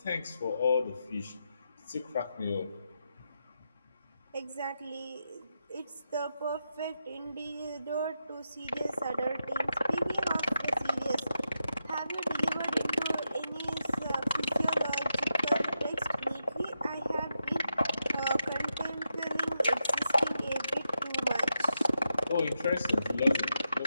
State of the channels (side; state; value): both; inverted; correlation -0.86